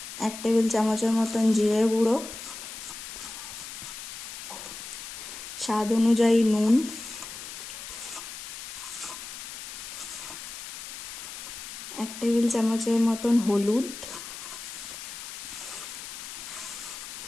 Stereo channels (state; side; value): noise; left; hiss, 10 dB below the sound